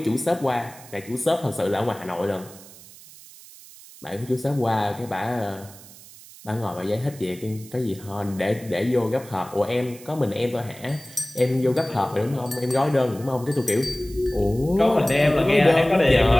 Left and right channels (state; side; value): noise; right; hiss, 20 dB below the sound